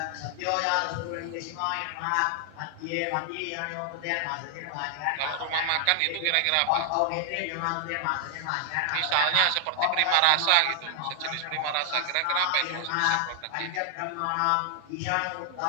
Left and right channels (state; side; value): different; both; correlation 0.00